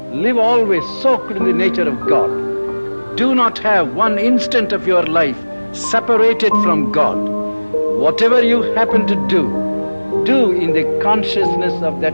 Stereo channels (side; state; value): both; inverted; correlation -1.00